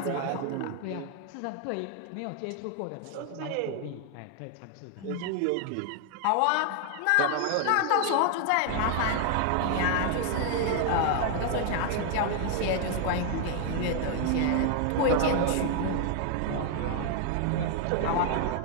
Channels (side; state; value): both; different; correlation 0.00